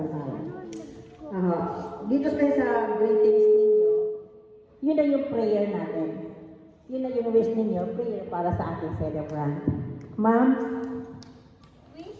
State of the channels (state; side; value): identical; both; correlation 1.00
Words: Dito tayo sa greetings ninyo, yun na yung prayer natin. Yun na yung wish ninyo, prayer para sa ating celebrant. Ma'am?